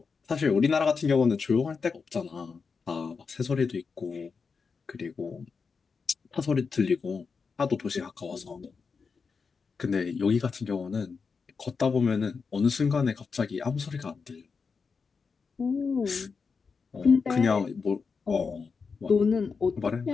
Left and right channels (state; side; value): quieter; right; 5.2 dB